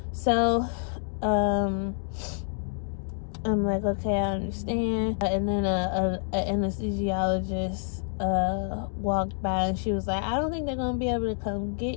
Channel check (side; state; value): right; silent; digital silence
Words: So I'm like, okay, I understand. And then an anesthesiologist walked by, and she was like, I don't think they're gonna be able to come get